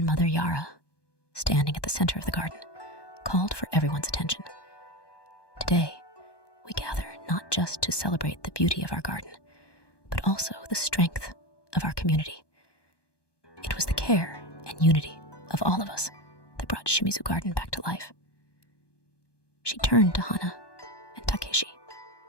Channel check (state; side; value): late; right; 1.2 ms